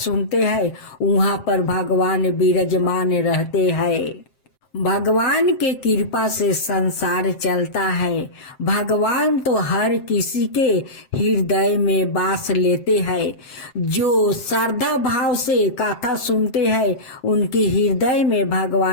हैं, वहाँ पर भगवान विराजमान रहते हैं। भगवान के कृपा से संसार चलता है। भगवान तो हर किसी के हृदय में वास लेते हैं। जो श्रद्धा भाव से कथा सुनते हैं, उनके हृदय में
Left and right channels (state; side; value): late; right; 7.6 ms